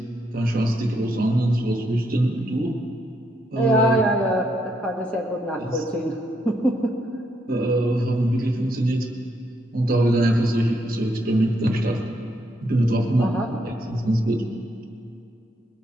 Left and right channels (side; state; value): both; normal; correlation 0.77